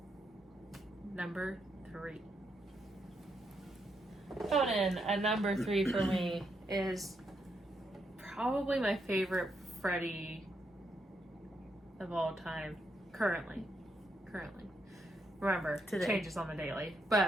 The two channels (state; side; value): normal; both; correlation 0.80